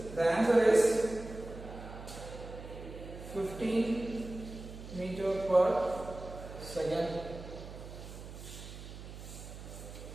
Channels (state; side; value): noise; right; hum, 12 dB below the sound